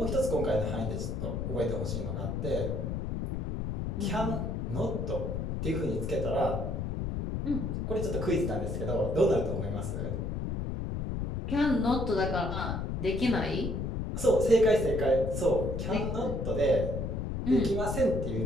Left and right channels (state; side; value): noise; left; rumble, 2 dB below the sound